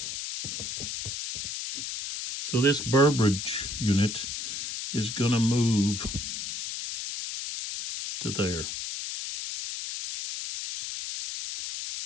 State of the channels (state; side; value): noise; left; hiss, 5 dB below the sound